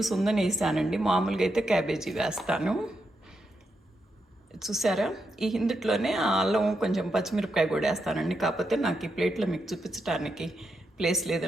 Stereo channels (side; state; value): both; normal; correlation 0.84